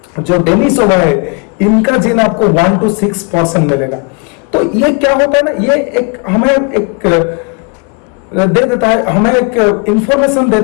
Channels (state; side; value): quieter; right; 33.4 dB